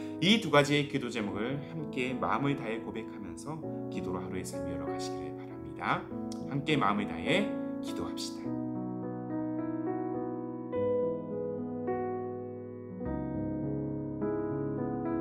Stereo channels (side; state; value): both; identical; correlation 1.00